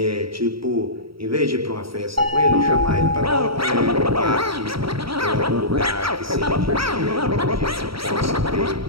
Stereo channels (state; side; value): late; left; 0.75 ms